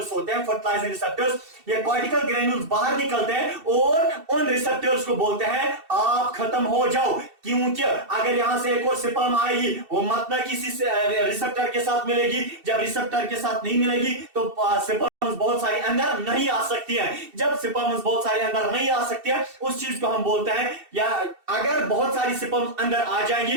होते हैं, फर्टिलाइजिंग रिसेप्टर्स, ये कॉर्टिकल ग्रेन्यूल्स बाहर निकलते हैं और उन रिसेप्टर्स को बोलते हैं आप खत्म हो जाओ। क्योंकि अगर यहां से एक और स्पर्म आएगी वो मत ना किसी रिसेप्टर के साथ मिलेगी, जब रिसेप्टर के साथ नहीं मिलेगी तो स्पर्म बहुत सारी अंदर नहीं आ सकती है। जब स्पर्म बहुत सारी अंदर नहीं आ सकती है उस चीज को हम बोलते हैं, या अगर बहुत सारी स्पर्म अंदर आ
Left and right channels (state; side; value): late; left; 2.7 ms